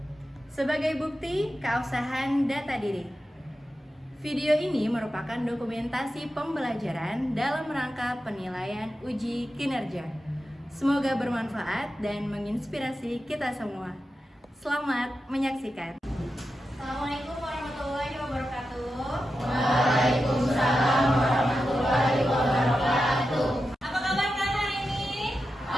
sebagai bukti keabsahan data diri. Video ini merupakan dokumentasi pembelajaran dalam rangka penilaian uji kinerja. Semoga bermanfaat dan menginspirasi kita semua. Selamat menyaksikan. Assalamualaikum warahmatullahi wabarakatuh. Waalaikumsalam warahmatullahi wabarakatuh. Apa kabar kalian hari ini?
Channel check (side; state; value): both; normal; correlation 0.90